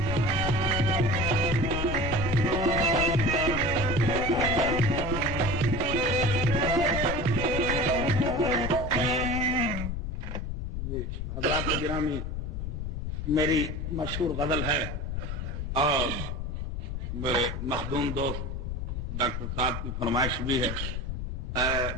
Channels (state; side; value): noise; left; rumble, 4 dB below the sound